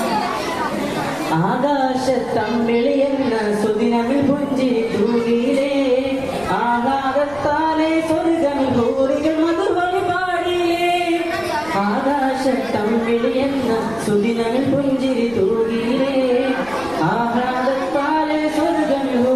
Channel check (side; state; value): right; noise; rumble, 21 dB below the sound